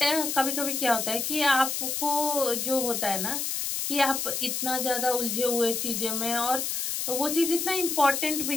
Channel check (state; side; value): noise; left; hiss, 1 dB below the sound